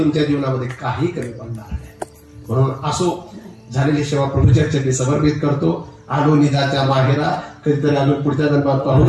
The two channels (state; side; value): identical; both; correlation 1.00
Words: जीवनामध्ये काही कमी पडणार नाही. म्हणून असो, झालेली सेवा प्रभूच्या चरणी समर्पित करतो. आलो निजाच्या माहेरा, कधीतरी आलो पुढच्या जन्मात